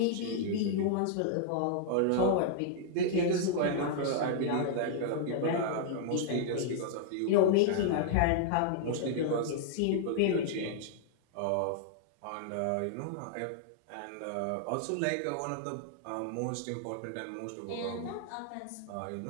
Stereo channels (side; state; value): both; different; correlation -0.01